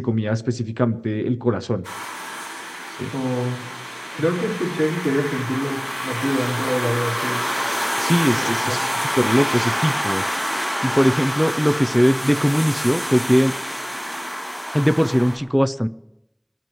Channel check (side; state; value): both; identical; correlation 1.00